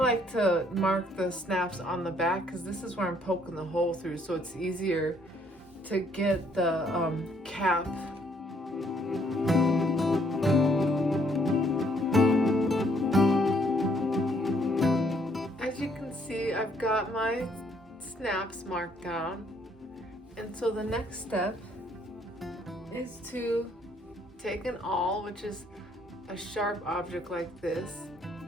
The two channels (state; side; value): normal; both; correlation 0.66